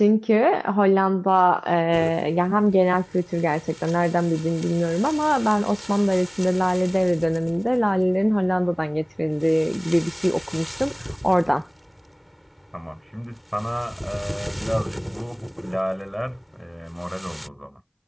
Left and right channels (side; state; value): both; identical; correlation 1.00